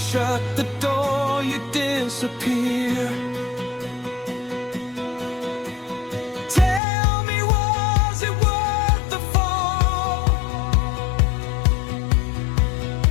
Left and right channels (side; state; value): right; drops out; at 6.8 s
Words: the door, you disappear. Tell me, was it worth the fall?